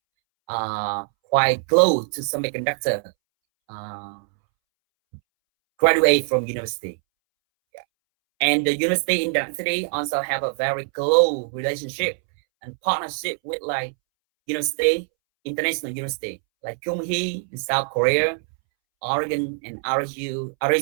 quite close to semiconductor uh, graduate from university. Yeah. And the university in Dang City also have a very close relationship and partnership with like university, international university like Kyung-hee in South Korea, Oregon and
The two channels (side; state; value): left; silent; 63 dB below the other